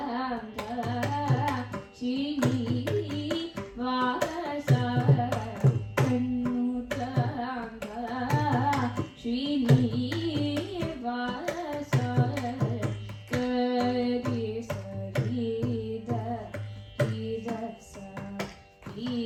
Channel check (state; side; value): identical; both; correlation 1.00